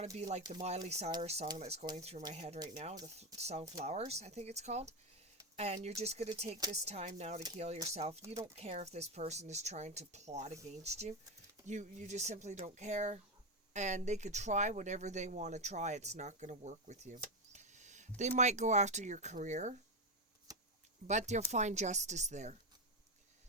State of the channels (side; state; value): both; normal; correlation 0.09